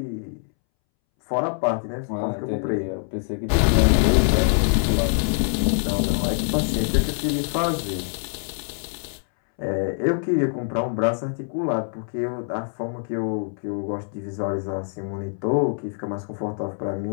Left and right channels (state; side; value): silent; right; 62 dB below the other